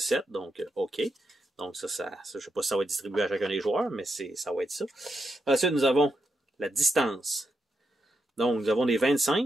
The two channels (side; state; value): both; normal; correlation 0.84